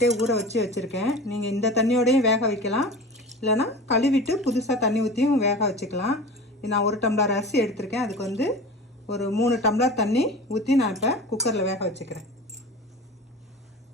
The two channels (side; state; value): both; normal; correlation 0.35